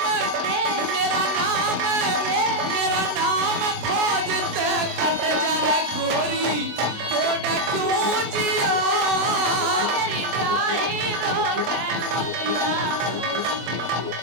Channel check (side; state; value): left; late; 24 ms